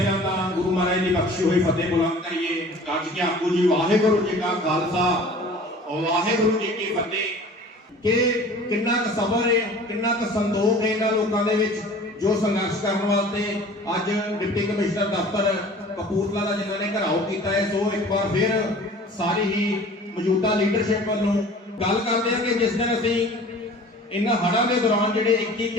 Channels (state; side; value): normal; both; correlation 0.45